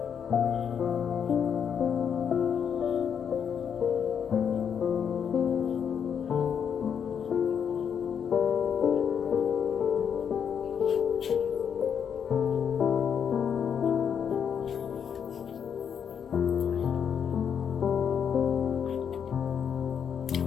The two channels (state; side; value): quieter; right; 7.7 dB